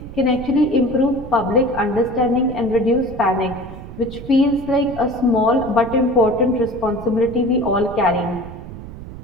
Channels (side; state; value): right; noise; rumble, 13 dB below the sound